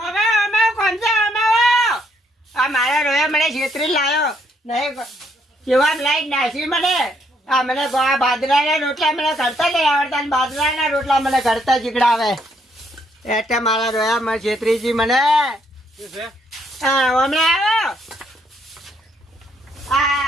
કોણ છે અમે આ મારા રોયા મને છેતરી લાયો નહીં કેવા લાઈટ નાખી મને આ મને બાજરાના રોટલા મને કરતા નહીં આવડતા અને બાજરાના રોટલા મને કરતા જીગડાવે એટલે મારા રોયા મને છેતરીજી મને શું છે હા હમણાં આવ્યો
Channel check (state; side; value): normal; both; correlation 0.71